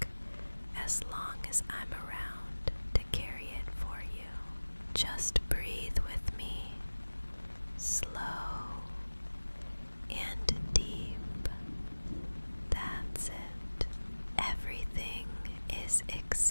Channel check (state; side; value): inverted; both; correlation -1.00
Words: as long as I'm around to carry it for you. Just breathe with me, slow and deep. That's it. Everything is